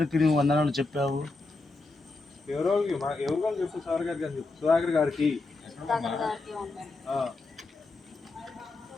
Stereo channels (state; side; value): quieter; right; 3.4 dB